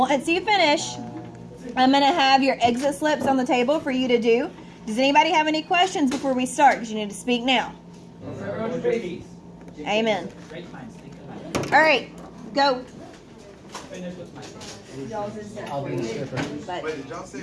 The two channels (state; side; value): identical; both; correlation 1.00